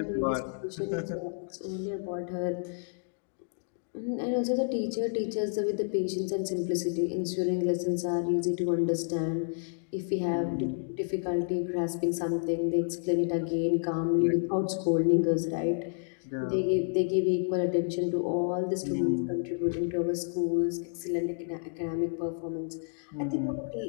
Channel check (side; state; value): right; silent; digital silence